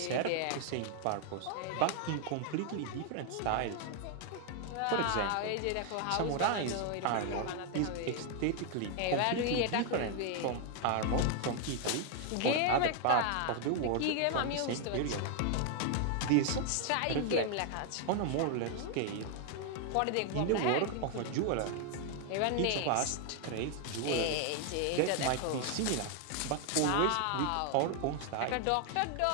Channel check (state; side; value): different; both; correlation 0.00